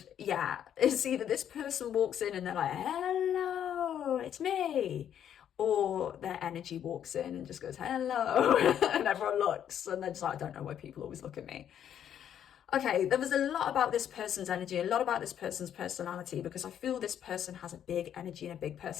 yeah, it's either this person walks in and they're like, hello, it's me. Or their energy walks in and just goes, hello. And everyone looks. And they're just like, I don't know why people always look at me. Okay, there was a lot about this person's energy, a lot about this person's personality, because I feel this person has a big energy and a big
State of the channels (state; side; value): quieter; right; 9.7 dB